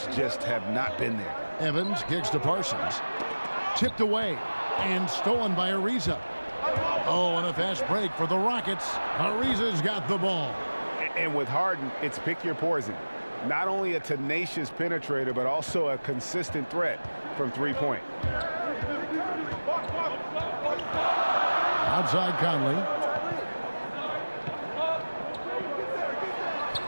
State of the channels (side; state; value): both; inverted; correlation -1.00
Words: just have not been there. Evans kicks to Parsons. Tipped away and stolen by Ariza. Oh, and a fast break for the Rockets. Ariza's got the ball. And with Harden, it's pick your poison. Not only a tenacious penetrator, but also a consistent threat from three-point. Outside Conley.